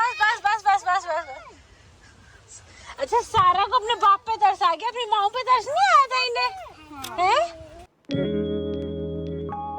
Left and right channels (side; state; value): both; identical; correlation 1.00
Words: बस बस बस बस बस। अच्छा, सारा को अपने बाप पे तरस आ गया, अपनी माँ पे तरस नहीं आया था इन्हें, हैं?